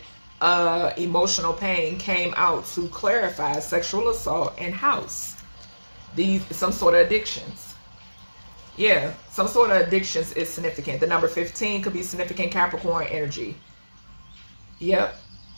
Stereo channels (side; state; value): both; inverted; correlation -1.00